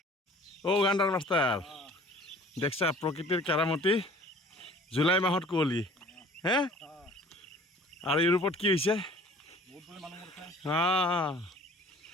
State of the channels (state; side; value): normal; both; correlation 0.50